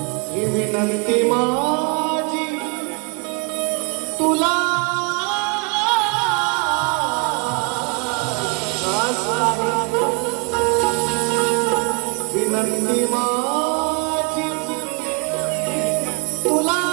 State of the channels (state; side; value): quieter; left; 34.2 dB